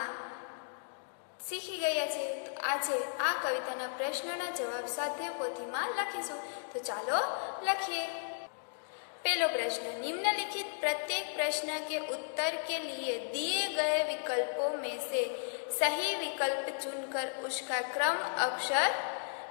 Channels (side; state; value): right; silent; digital silence